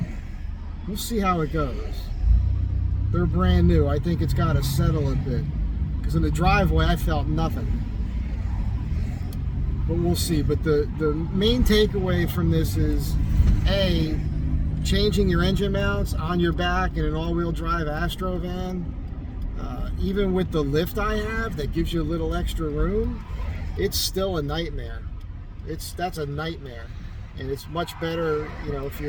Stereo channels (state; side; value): identical; both; correlation 1.00